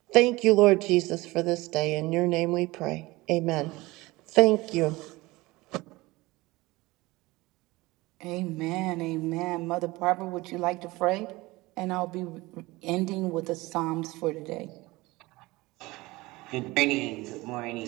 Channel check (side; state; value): left; quieter; 21.0 dB